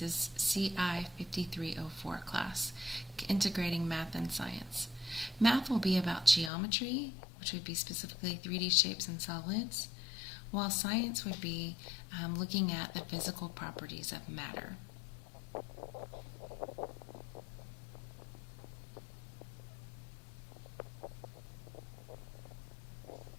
CI 5304 class, Integrating Math and Science. Math will be about geometry, which would be specifically 3D shapes and solids, while science would be looking at the physical properties of matter.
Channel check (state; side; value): drops out; right; at 6.5 s